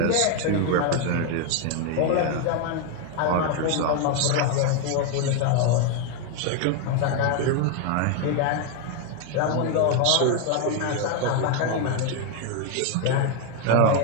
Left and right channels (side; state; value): both; different; correlation 0.01